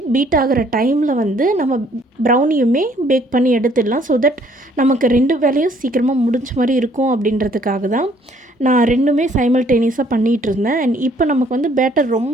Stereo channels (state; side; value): normal; both; correlation 0.62